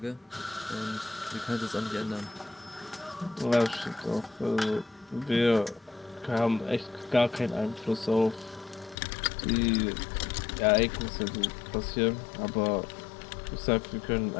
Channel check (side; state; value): right; drops out; at 9.0 s